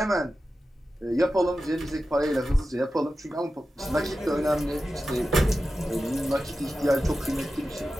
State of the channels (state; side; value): normal; both; correlation 0.93